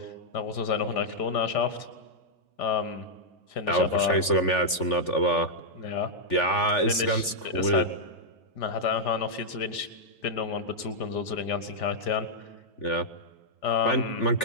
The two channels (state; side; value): late; right; 3.4 ms